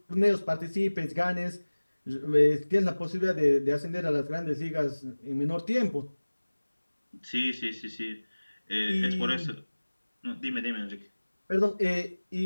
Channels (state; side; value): inverted; both; correlation -1.00